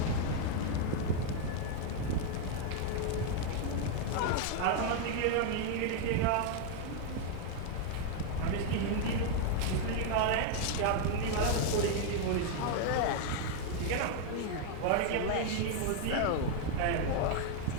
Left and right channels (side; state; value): both; different; correlation 0.00